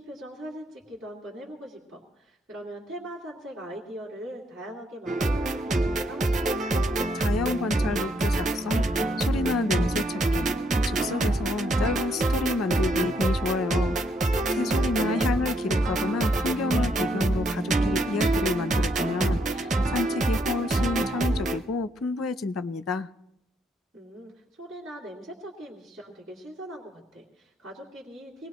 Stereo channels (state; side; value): normal; both; correlation 0.73